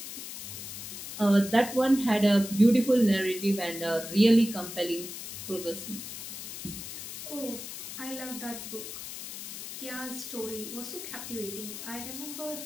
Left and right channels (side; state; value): left; noise; hiss, 9 dB below the sound